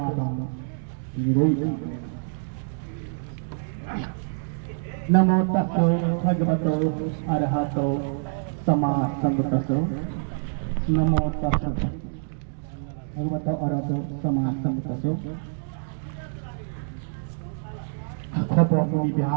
Nirogi Namo Tassa Bhagavato Arahato Samma Sambuddhassa Namo Tassa Bhagavato Arahato Samma Sambuddhassa Khopo Muni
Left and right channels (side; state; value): left; silent; digital silence